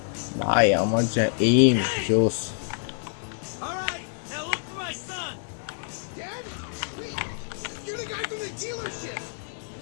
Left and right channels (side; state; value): right; silent; digital silence